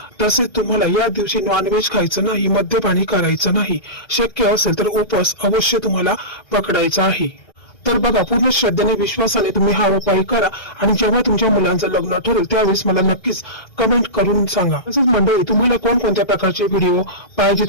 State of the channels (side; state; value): right; late; 1.3 ms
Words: तसेच तुम्हाला या दिवशी नॉनव्हेज खायचं नाही, मद्यपानी करायचं नाही. शक्य असेल तर उपवास अवश्य तुम्हाला पकडायचा आहे. तर बघा, पूर्ण श्रद्धेने विश्वासाने तुम्ही हा उपाय करा आणि जेव्हा तुमच्या मुलांचं लग्न ठरेल त्यावेळेस मला नक्कीच कमेंट करून सांगा. तसेच मंडळी, तुम्हाला कोणकोणत्या प्रकारचे व्हिडिओ